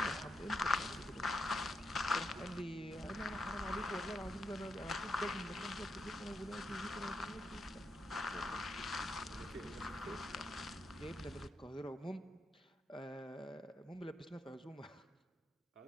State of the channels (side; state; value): both; normal; correlation 0.83